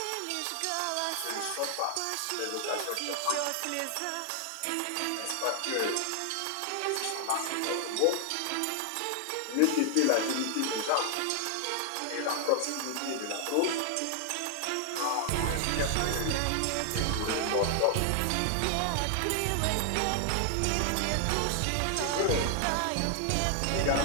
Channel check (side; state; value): both; different; correlation 0.00